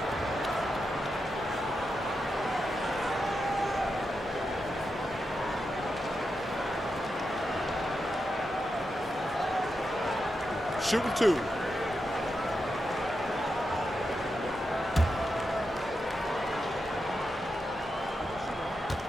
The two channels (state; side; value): normal; both; correlation 0.87